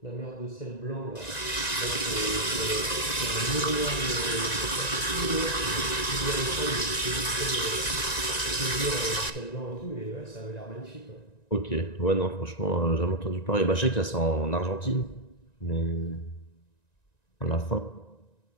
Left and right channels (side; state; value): right; late; 1.9 ms